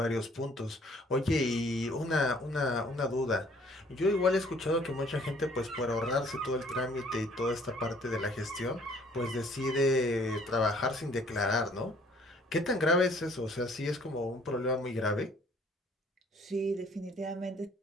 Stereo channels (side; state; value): both; normal; correlation 0.59